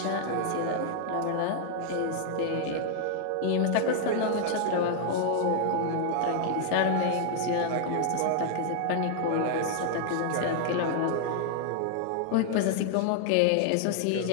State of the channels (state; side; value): different; both; correlation -0.01